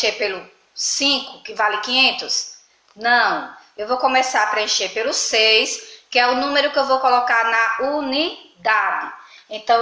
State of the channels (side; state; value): both; identical; correlation 1.00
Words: pelo 5, que vale 500? Não. Eu vou começar a preencher pelo 6, que é o número que eu vou colocar na unidade. Então,